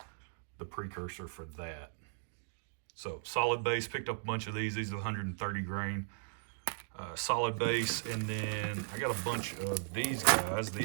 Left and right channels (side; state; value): left; silent; digital silence